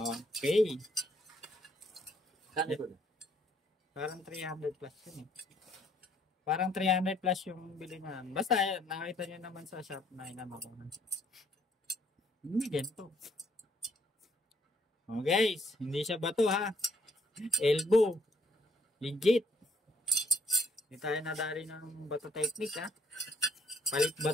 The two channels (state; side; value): normal; both; correlation 0.66